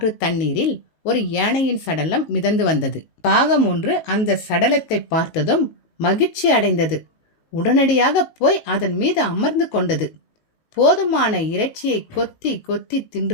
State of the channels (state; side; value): late; right; 18 ms